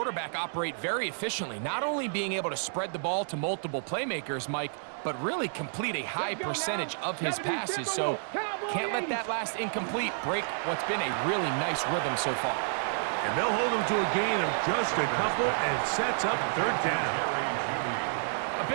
operate very efficiently, not only being able to spread the ball to multiple playmakers, Mike, but really complete a high percentage of his passes. So can't let that last incomplete break what's been a really nice rhythm so far. And they'll hold him to a gain of just a couple and sets up third down. A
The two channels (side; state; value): left; silent; digital silence